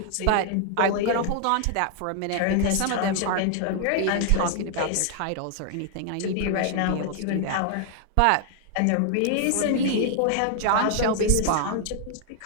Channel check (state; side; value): different; both; correlation 0.00